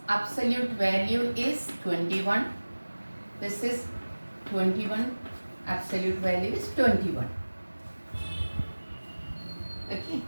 absolute value is 21. This is 21. Absolute value is 21. Okay.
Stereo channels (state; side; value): inverted; both; correlation -1.00